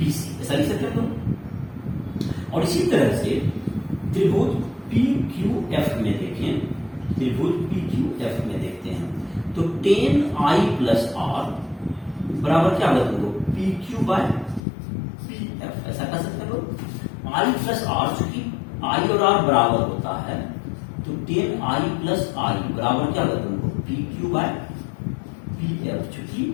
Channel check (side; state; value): right; drops out; at 14.6 s